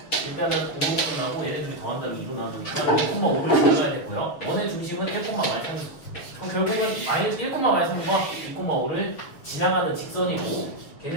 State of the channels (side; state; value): right; late; 6.8 ms